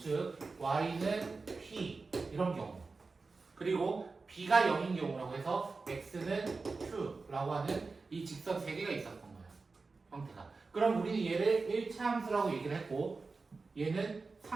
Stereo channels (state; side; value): quieter; left; 4.1 dB